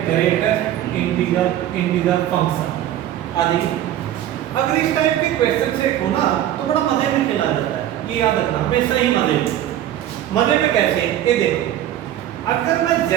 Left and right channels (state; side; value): quieter; left; 12.1 dB